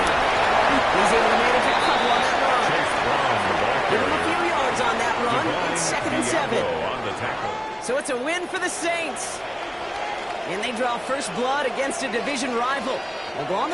He's able to manage a couple on that run. Chase Brown, the ball Give him a few carrier. yards on that run. It's second and 7. On the tackle. So it's a win for the Saints. And they draw first blood against a division rival. They'll go on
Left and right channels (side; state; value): both; identical; correlation 1.00